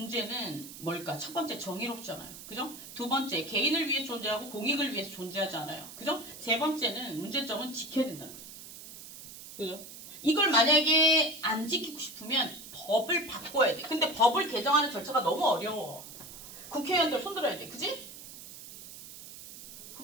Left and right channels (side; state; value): right; noise; hiss, 14 dB below the sound